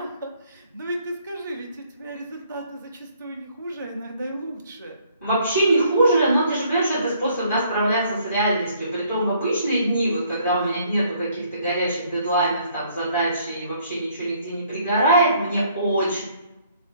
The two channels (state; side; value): inverted; both; correlation -0.64